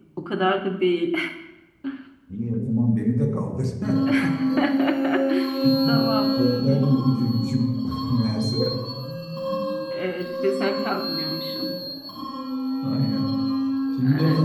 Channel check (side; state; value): both; identical; correlation 1.00